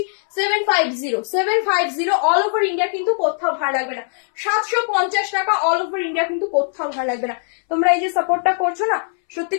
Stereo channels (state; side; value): silent; right; 66 dB below the other